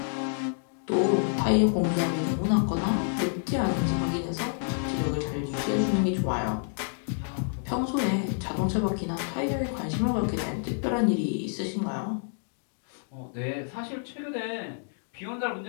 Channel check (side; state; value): right; silent; digital silence